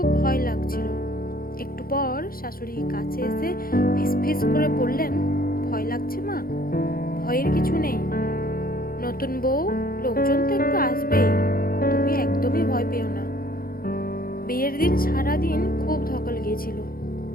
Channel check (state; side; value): late; right; 0.42 ms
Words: ভয় লাগছিল। একটু পর শাশুড়ি কাছে এসে ফিসফিস করে বললেন, ভয় লাগছে মা? ভয়ের কিছু নেই। নতুন বউ, লোকজন তো একটু আসবেই, তুমি একদমই ভয় পেও না। বিয়ের দিন সারাদিন খুব ধকল গিয়েছিল,